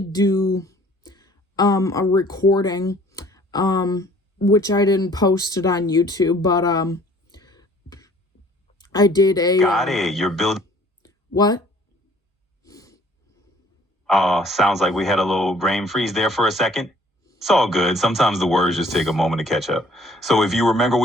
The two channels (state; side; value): normal; both; correlation 0.56